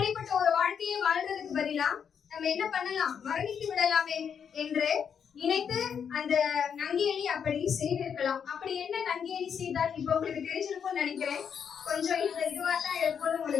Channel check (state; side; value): quieter; right; 7.4 dB